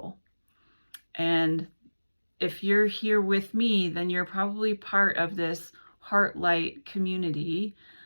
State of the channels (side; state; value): both; inverted; correlation -1.00